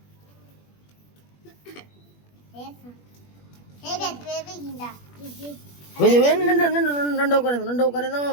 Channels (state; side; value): late; right; 21 ms